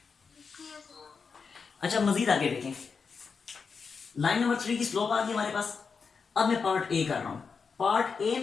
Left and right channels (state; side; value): quieter; right; 5.4 dB